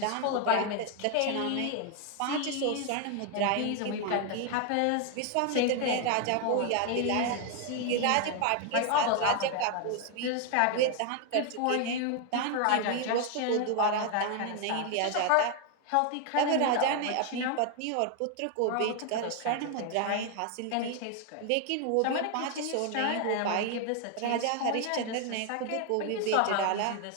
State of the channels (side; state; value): both; different; correlation 0.01